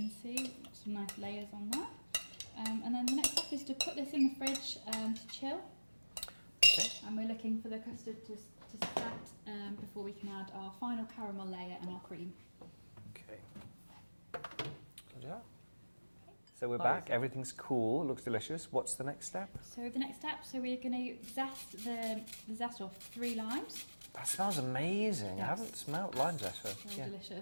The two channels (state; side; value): inverted; both; correlation -1.00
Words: see some nice layers on that. And then the next step is to put this in the fridge to chill. Okay. And we're looking for the custard to set before we can add our final caramel layer and our cream. Okay. So we're back. Everything's cool. Looks delicious. What's the next step? So the next step, we're going to zest the zest off 3 limes. That smells amazing. I Yes. haven't smelt lime zest for. Very